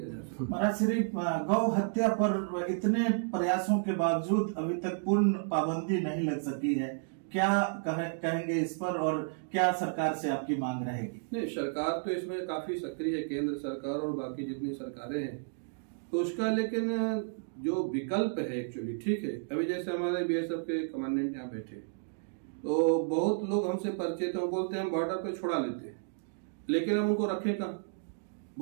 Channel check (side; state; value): left; silent; digital silence